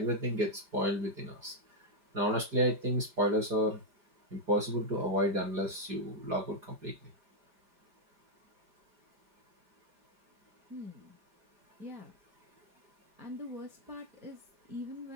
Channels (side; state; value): left; late; 5.0 ms